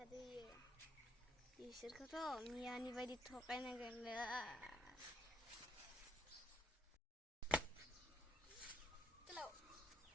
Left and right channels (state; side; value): normal; both; correlation 0.72